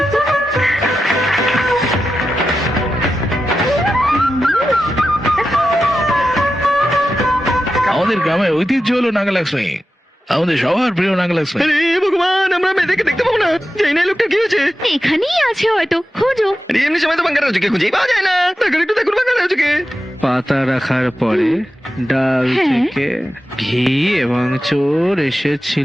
আমাদের গ্রামের ঐতিহ্য হলো নাগালক্ষ্মী, আমাদের সবার প্রিয় নাগালক্ষ্মী। আরে ভগবান, আমরা মেয়েদেরকে দেখতে পাবো না। জানি না এই লোকটা কি হয়েছে। এখানেই আছে হয়তো, খোঁজো। আরে এমনি সময় তো বাঙ্গার রাজুকে খুঁজেই পাওয়া যায় না। দেখুন একটু, দেখুন বাঙ্গার রাজুকে। পাতা রাখার পরে ডাল হ্যাঁ। থেকে ঘি এবং চোর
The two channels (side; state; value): both; normal; correlation 0.91